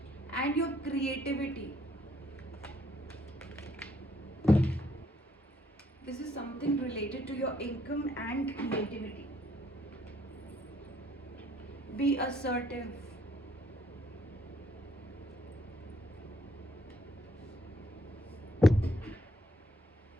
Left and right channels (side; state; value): both; normal; correlation 0.67